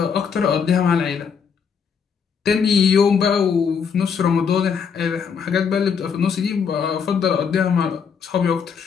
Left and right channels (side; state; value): right; quieter; 6.4 dB